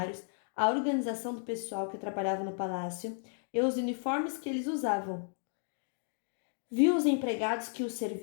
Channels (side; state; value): right; silent; 55 dB below the other